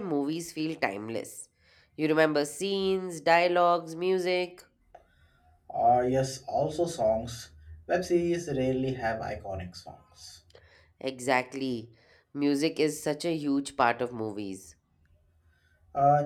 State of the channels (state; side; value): identical; both; correlation 1.00